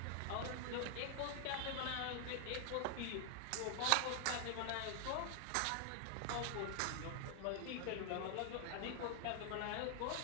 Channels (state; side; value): different; both; correlation 0.00